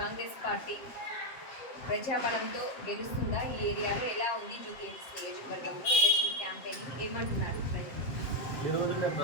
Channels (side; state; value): right; late; 7.5 ms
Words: కాంగ్రెస్ పార్టీ ప్రజాబలంతో గెలుస్తుందా, ఈ ఏరియాలో ఎలా ఉంది, జూబ్లీహిల్స్ నియోజకవర్గంలో ఎలక్షన్ క్యాంపెయిన్ ఏమంటున్నారు ప్రజలు. ఈరోజు మేము